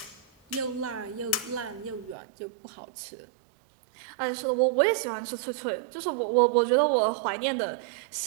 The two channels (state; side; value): drops out; left; at 2.1 s